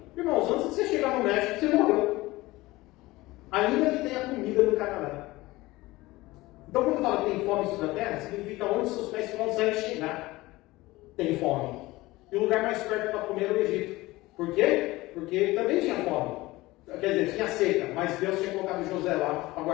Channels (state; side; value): quieter; right; 19.6 dB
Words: Irmãos, antes de você chegar no México, você morreu. Ainda que tenha comida no Canadá. Então, quando fala que tem fome sobre a terra, significa onde seus pés conseguem chegar. Tem fome. E o lugar mais perto para comer era o Egito. Por quê? Porque ele também tinha fome. Quer dizer, tinha seca, mas Deus tinha colocado José lá para